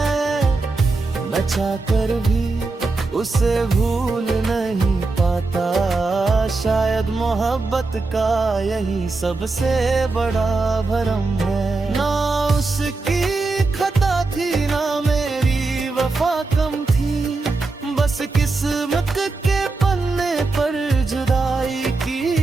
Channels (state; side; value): quieter; left; 3.6 dB